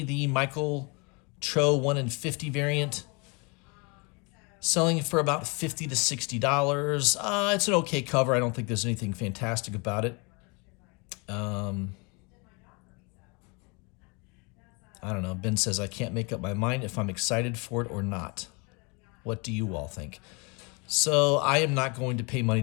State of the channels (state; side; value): quieter; right; 30.5 dB